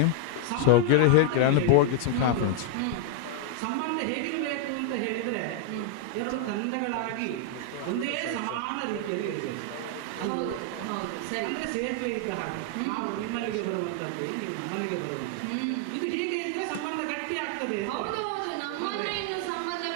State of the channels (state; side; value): different; both; correlation 0.00